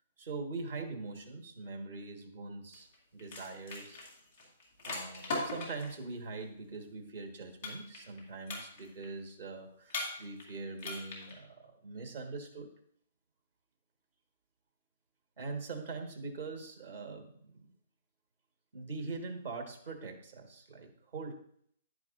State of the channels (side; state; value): both; inverted; correlation -0.50